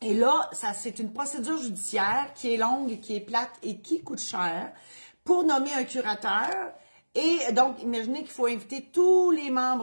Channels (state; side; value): inverted; both; correlation -1.00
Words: Et là, c'est une procédure judiciaire qui est longue, qui est plate et qui coûte cher pour nommer un curateur. Et donc, imaginez qu'il faut inviter tous les